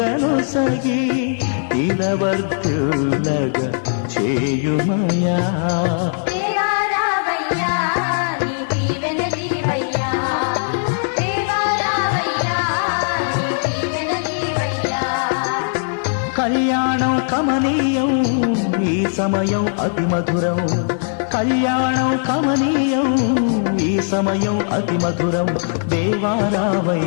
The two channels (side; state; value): right; silent; digital silence